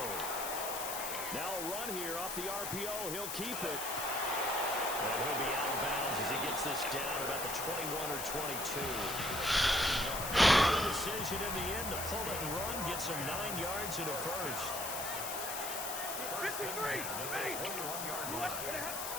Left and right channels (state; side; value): noise; left; hiss, 4 dB below the sound